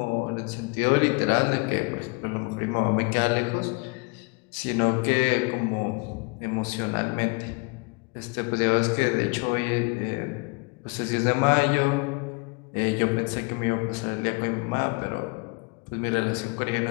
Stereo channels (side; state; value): right; quieter; 30.5 dB